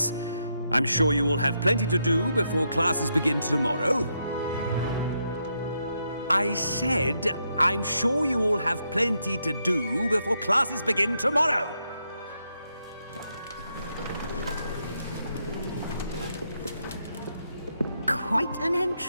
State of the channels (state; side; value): inverted; both; correlation -0.80